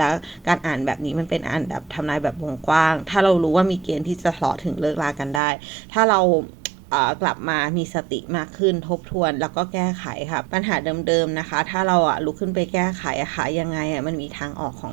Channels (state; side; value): drops out; left; at 5.4 s